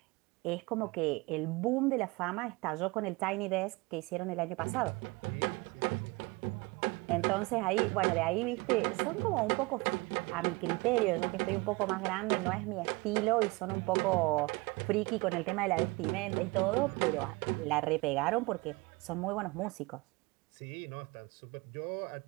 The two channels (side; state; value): left; quieter; 24.8 dB